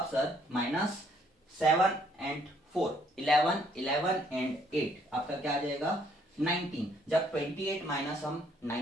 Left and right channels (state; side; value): normal; both; correlation 0.66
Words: सर माइनस 7 एंड 4, 11, 11 एंड 8 आपका क्या आ जाएगा, 19। जब 28 माइनस हम